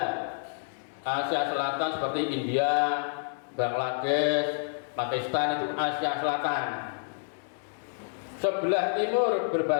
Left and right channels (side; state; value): right; silent; digital silence